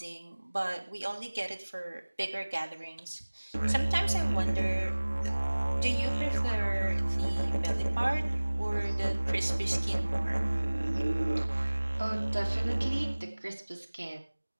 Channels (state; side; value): inverted; both; correlation -1.00